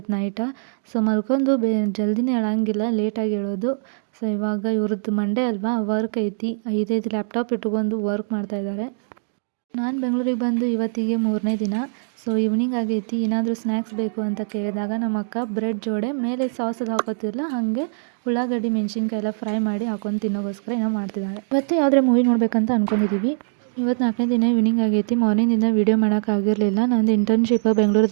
ನೈಟ. ಸೊ ಮಲ್ಕೊಂಡು ಜಲ್ದಿನೇ ಹೇಳಂಗಿಲ್ಲ, ಲೇಟಾಗಿ ಹೇಳೋದು. ಸೊ ಇವಾಗ ಇವ್ರದ್ದು ಮಂಡೇ ಅಲ್ವಾ, ವರ್ಕ್ ಐತಿ. 5 ಲ್ಯಾಪ್ಟಾಪ್ ಇಟ್ಕೊಂಡು ವರ್ಕ್ ಮಾಡ್ತಾಯಿದ್ದಾರೆ. ನಾನು ಬೆಂಗಳೂರಿಗೆ ಬಂದು ಇವತ್ತಿಗೆ 3ನೇ ದಿನ. ಸೊ ಈವ್ನಿಂಗ್ ಆಗೈತಿ. ಏನಾದರೂ ಸ್ನ್ಯಾಕ್ಸ್ ಬೇಕು ಅಂತ ಕೇಳಿದಾಗ ನಮ್ಮ ಅಕ್ಕ ಬ್ರೆಡ್ ಜೋಡೆ ಮೇಲೆ ಸಾಸ್ ಅದು ಹಾಕೋತಿರಲ್ಲ, ಹಾಗೆ ಉಳ್ಳಾಗಡ್ಡಿ ಮೆಣಸಿನ್ಕಾಯಿ ಎಲ್ಲ ಫ್ರೈ ಮಾಡಿ ಹಾಕೊಂಡು ತಿನ್ನೋಗೋಸ್ಕರ ಏನೋ ಮಾಡ್ತಿದ್ದಾಳೆ. ಇವತ್ತು ಯಾವುದೇ ಮೂವಿ ನೋಡಬೇಕಂತ ಅಂದ್ಕೊಂಡಿದ್ದೀವಿ. ಇವತ್ತು 4ನೇ ದಿನ ಈವ್ನಿಂಗ್ ಆಗೈತಿ. ಮಾರ್ನಿಂಗಿಂದ ವೀಡಿಯೋ ಮಾಡೋಕ್ಕಾಗಿರಲಿಲ್ಲ. ನಂದು ಇಂಟರ್ನ್ಶಿಪ್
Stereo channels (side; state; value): left; silent; 64 dB below the other